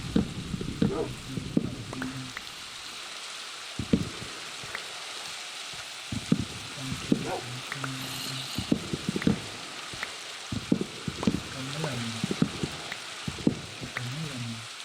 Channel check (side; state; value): both; identical; correlation 1.00